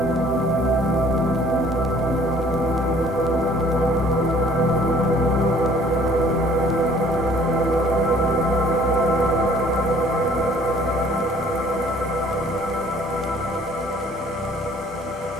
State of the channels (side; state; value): both; normal; correlation 0.56